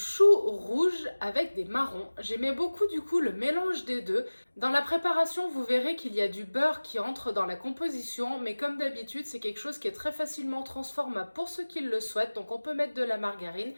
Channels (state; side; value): inverted; both; correlation -1.00